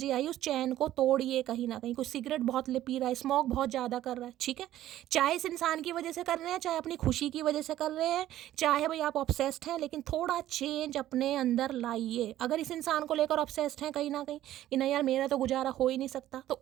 आई, उस चैन को तोड़िए कहीं ना कहीं। कोई सिगरेट बहुत पी रहा है, स्मोक बहुत ज़्यादा कर रहा है, ठीक है, चाहे इस इंसान की वजह से कर रहे हैं, चाहे अपनी खुशी की वजह से कर रहे हैं, चाहे भाई आप ऑब्सेस्ड हैं, लेकिन थोड़ा चेंज अपने अंदर लाइए। अगर इस इंसान को लेकर ऑब्सेस्ड हैं कहीं ना कहीं कि नहीं यार मेरा तो गुजारा हो ही नहीं सकता, तो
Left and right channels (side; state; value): left; quieter; 13.4 dB